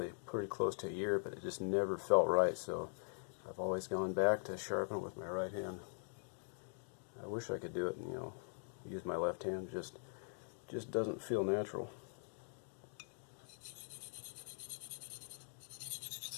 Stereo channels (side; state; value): right; silent; digital silence